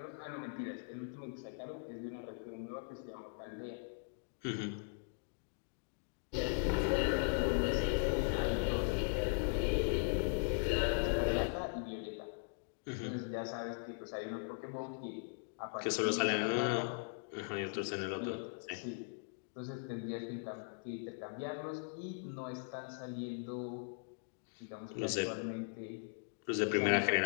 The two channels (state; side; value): silent; right; digital silence